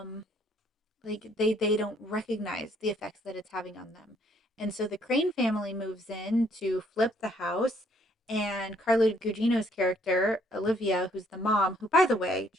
they don't recognize the effects that it's having on them. And so the Crane family moves in to flip the house, and Carla Gugino's character Olivia, who's the mom, who, by the way,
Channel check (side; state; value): both; normal; correlation 0.65